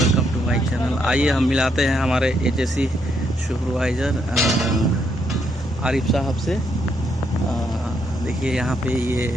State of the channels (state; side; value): normal; both; correlation 0.76